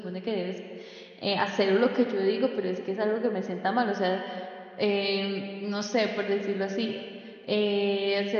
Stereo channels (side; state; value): both; identical; correlation 1.00